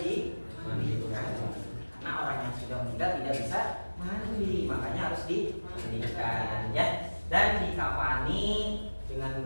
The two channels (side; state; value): both; inverted; correlation -1.00